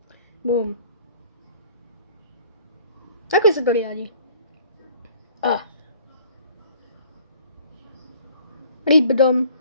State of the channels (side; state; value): both; inverted; correlation -0.52